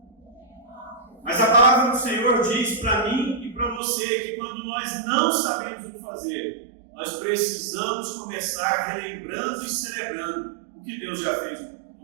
Mas a palavra do Senhor diz para mim e para você que quando nós não sabemos o que fazer, nós precisamos começar relembrando e celebrando o que Deus já fez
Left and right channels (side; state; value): left; drops out; at 3.8 s